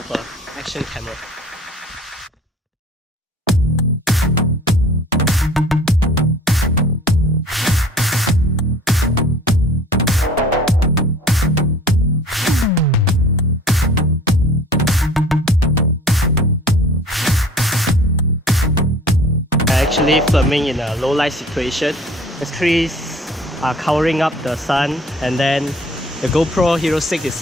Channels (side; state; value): both; normal; correlation 0.49